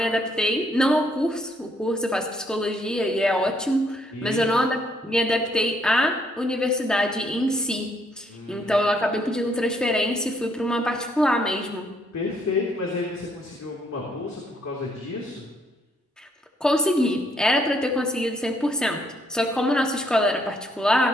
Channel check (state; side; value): normal; both; correlation 0.70